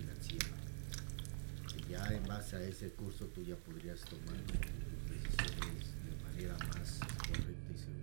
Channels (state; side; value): silent; left; digital silence